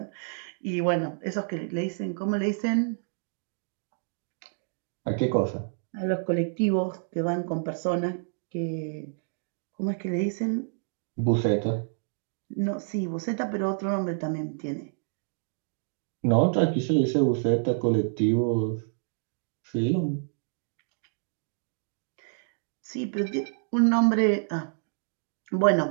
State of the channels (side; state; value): left; silent; digital silence